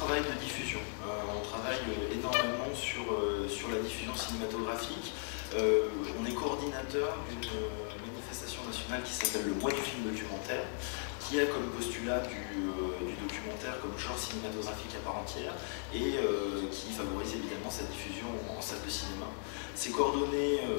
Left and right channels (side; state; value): right; silent; 53 dB below the other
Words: de diffusion. On travaille énormément sur la diffusion cinématographique. On est coordinateur d'une manifestation nationale qui s'appelle le Mois du film documentaire, qui a comme postulat du documentaire comme genre cinématographique à part entière, et qui favorise évidemment sa diffusion en salle de cinéma. C'est coordonné